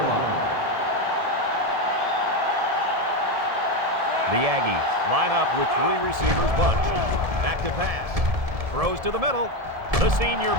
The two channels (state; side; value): late; left; 1.7 ms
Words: line. The Aggies line up with 3 receivers bunched. Back to pass. Throws to the middle. The senior